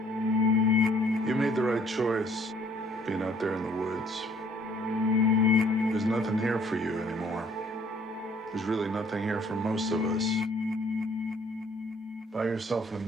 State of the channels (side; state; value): both; normal; correlation 0.60